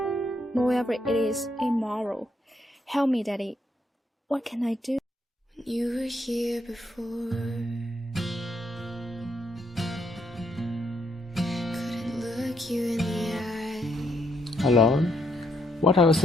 moreover, it is immoral. Help me, Daddy. What can I do? You were here before. Couldn't look you in the eye. Alone? What are you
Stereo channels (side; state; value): both; normal; correlation 0.75